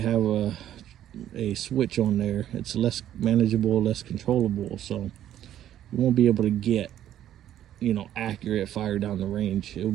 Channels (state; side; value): quieter; left; 11.5 dB